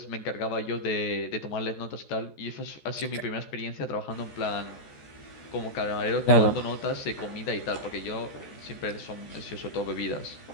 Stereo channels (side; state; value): right; late; 14 ms